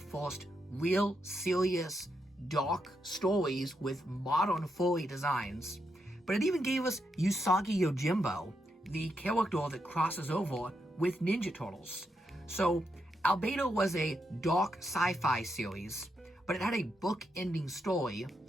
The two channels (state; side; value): normal; both; correlation 0.82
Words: real, serious, dark stories with modern furry designs, but it even gave us Usagi Yojimbo, the character that crosses over with Ninja Turtles. So, Albedo was a dark sci-fi series, but it had a book-ending story